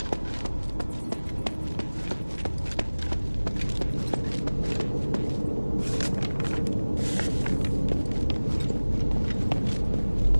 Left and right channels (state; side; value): inverted; both; correlation -1.00